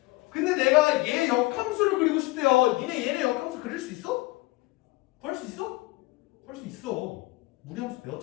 근데 내가 얘 역함수를 그리고 싶대요. 니네 얘네 역함수 그릴 수 있어? 구할 수 있어? 구할 수 있어. 무리함수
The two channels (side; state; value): right; quieter; 21.2 dB